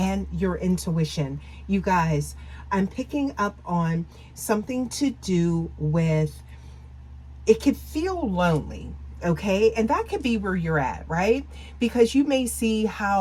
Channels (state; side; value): identical; both; correlation 1.00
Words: your intuition. You guys, I'm picking up on something to do with, it could feel lonely, okay? And that could be where you're at, right? Because you may see